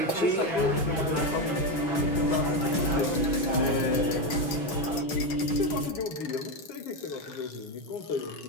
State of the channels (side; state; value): right; late; 6.4 ms